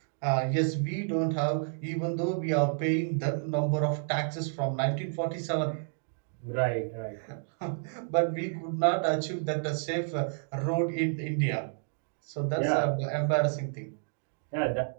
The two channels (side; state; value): left; silent; digital silence